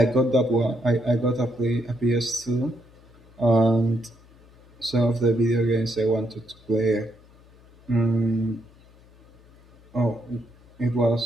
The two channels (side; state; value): left; noise; hum, 26 dB below the sound